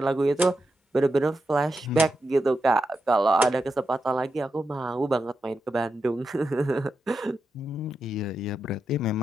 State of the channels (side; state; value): both; normal; correlation 0.87